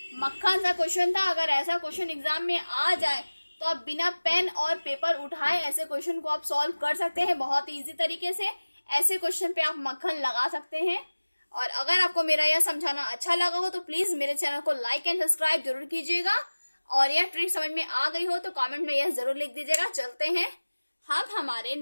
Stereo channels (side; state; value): both; inverted; correlation -1.00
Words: मक्खन सा क्वेश्चन था। अगर ऐसा क्वेश्चन एग्जाम में आ जाए तो आप बिना पेन और पेपर उठाए ऐसे क्वेश्चन को आप सॉल्व कर सकते हैं बहुत ही इजी तरीके से। ऐसे क्वेश्चन पे आप मक्खन लगा सकते हैं। और अगर आपको मेरा यह समझाना अच्छा लगा हो तो प्लीज मेरे चैनल को लाइक एंड सब्सक्राइब जरूर कीजिएगा, और यह ट्रिक समझ में आ गई हो तो कमेंट में यह जरूर लिख दीजिएगा। चलते हैं हम हमारे